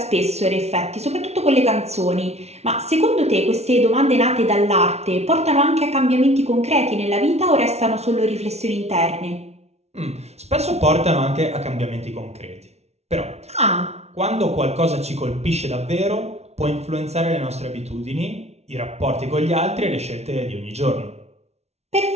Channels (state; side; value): late; left; 0.31 ms